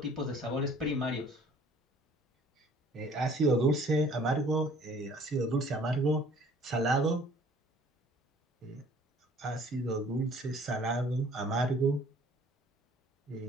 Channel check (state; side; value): normal; both; correlation 0.54